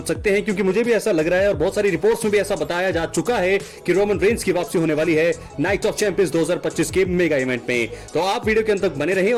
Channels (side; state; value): both; identical; correlation 1.00